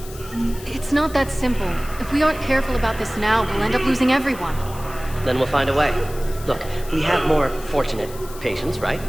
It's not that simple. If we aren't careful about this now, we'll end up losing everyone. Then we'll find a way. Look, we have more fortunate patients, right?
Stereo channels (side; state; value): left; noise; hiss, 17 dB below the sound